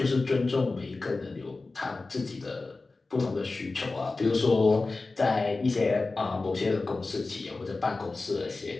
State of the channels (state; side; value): quieter; right; 3.6 dB